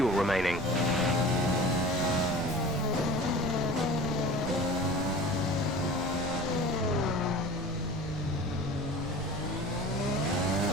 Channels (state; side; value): noise; right; rumble, 10 dB below the sound